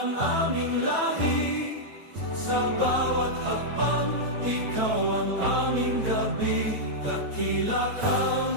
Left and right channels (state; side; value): late; left; 9.1 ms